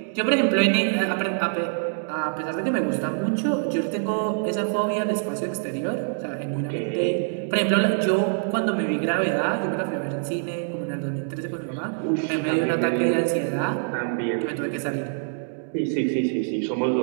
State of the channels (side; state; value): left; silent; 61 dB below the other